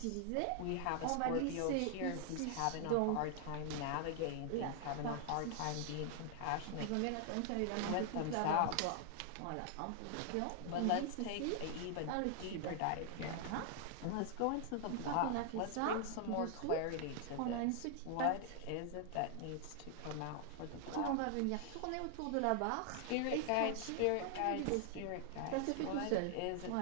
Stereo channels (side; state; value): both; different; correlation 0.00